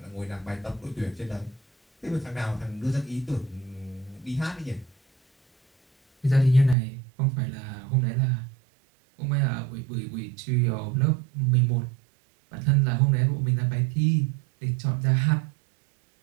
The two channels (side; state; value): left; drops out; at 6.8 s